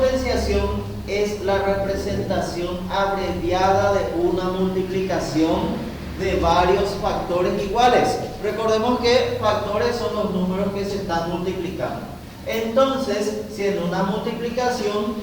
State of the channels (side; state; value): both; identical; correlation 1.00